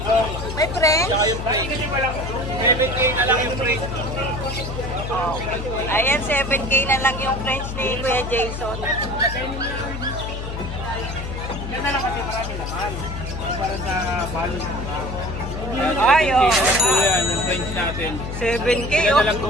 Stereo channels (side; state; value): left; noise; hum, 7 dB below the sound